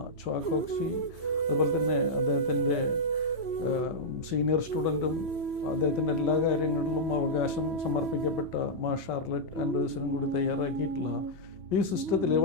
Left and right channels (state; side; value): late; right; 3.1 ms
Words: ച്വാ കോക്സി, അതുപോലെ തന്നെ അദ്ദേഹത്തിൻ്റെ സീനിയർ സ്റ്റുഡൻറ്റും അദ്ദേഹത്തിൻ്റെ എല്ലാ കാര്യങ്ങളിലും അവകാശം സമർപ്പിക്കപ്പെട്ട മാ ഷാർലറ്റ് ആൻഡേഴ്സണും കൂടി തയ്യാറാക്കിയിട്ടുള്ള ഈ സിസ്റ്റത്തിൽ